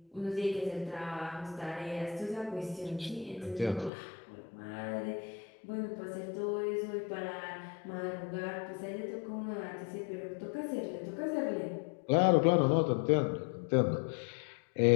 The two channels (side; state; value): right; drops out; at 3.9 s